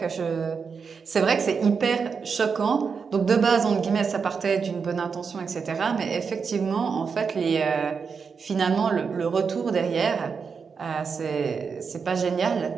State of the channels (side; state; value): left; quieter; 5.7 dB